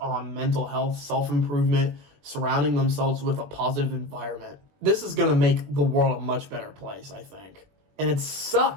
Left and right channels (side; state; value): left; late; 20 ms